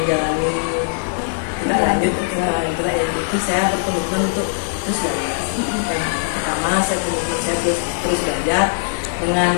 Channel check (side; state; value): right; silent; digital silence